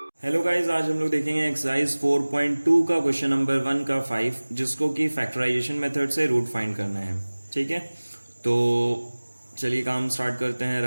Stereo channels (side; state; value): both; inverted; correlation -1.00